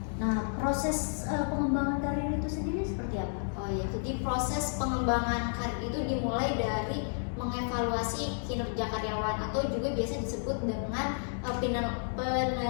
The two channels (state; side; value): silent; right; digital silence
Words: Nah, proses pengembangan karir itu sendiri seperti apa? Oh ya, jadi proses pengembangan karir itu dimulai dari mengevaluasi kinerja karyawan atau juga biasa disebut dengan penilaian